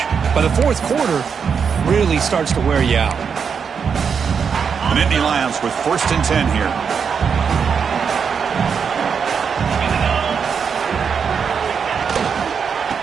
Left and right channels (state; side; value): quieter; left; 6.5 dB